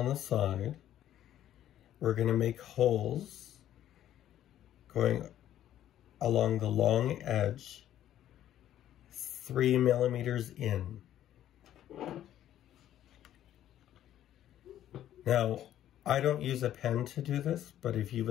the side, we're going to make holes going along the long edge 3 millimeters in. Now, I don't use a pen to do this, but if you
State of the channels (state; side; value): quieter; right; 11.8 dB